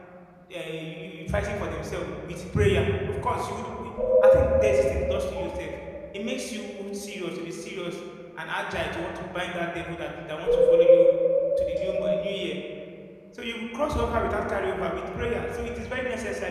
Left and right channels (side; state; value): both; identical; correlation 1.00